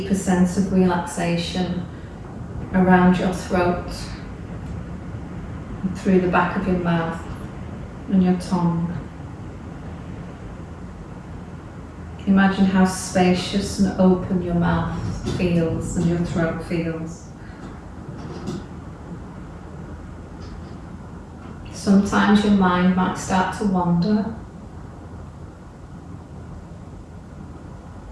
sense of relaxation around your throat, and through the back of your mouth and your tongue. Imagine how spacious and open your mouth feels and your throat feels. Sometimes your mind might start to wander.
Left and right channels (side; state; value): both; identical; correlation 1.00